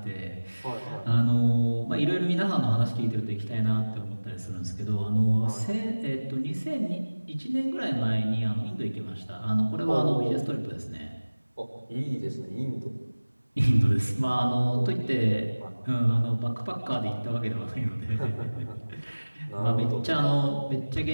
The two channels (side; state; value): both; inverted; correlation -1.00